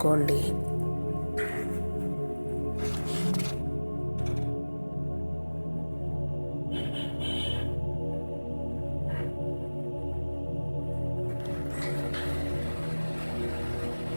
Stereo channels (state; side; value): inverted; both; correlation -1.00